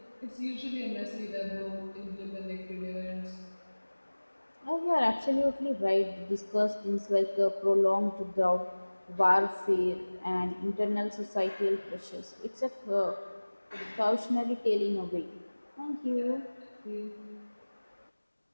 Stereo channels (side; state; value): both; inverted; correlation -1.00